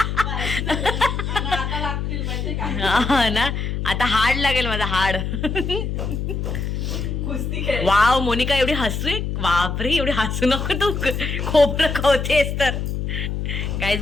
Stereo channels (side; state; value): left; noise; hum, 3 dB below the sound